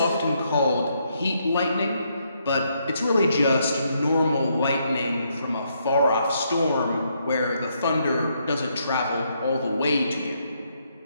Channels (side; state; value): both; inverted; correlation -0.75